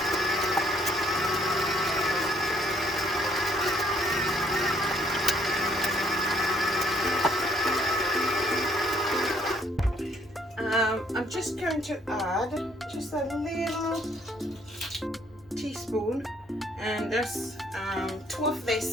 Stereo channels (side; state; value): both; normal; correlation 0.65